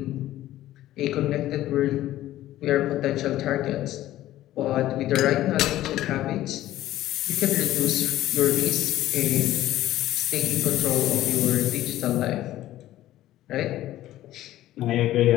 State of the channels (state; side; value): quieter; right; 14.4 dB